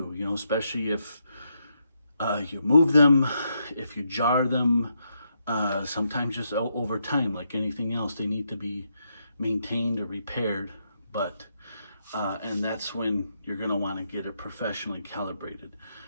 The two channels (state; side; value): inverted; both; correlation -0.80